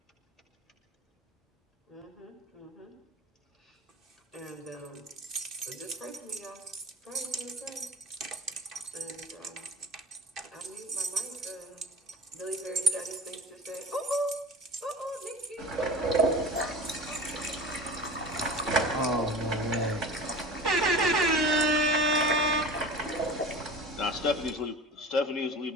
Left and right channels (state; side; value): normal; both; correlation 0.36